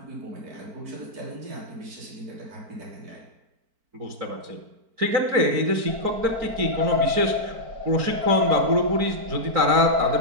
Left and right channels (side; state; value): left; late; 4.5 ms